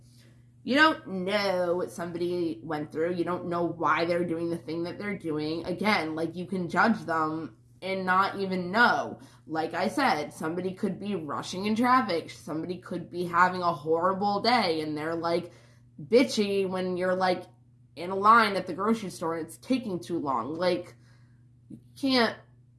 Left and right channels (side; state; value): both; identical; correlation 1.00